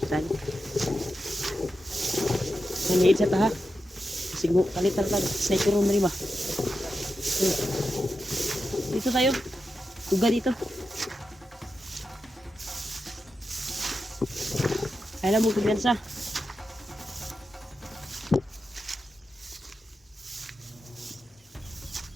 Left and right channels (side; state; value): both; normal; correlation 0.89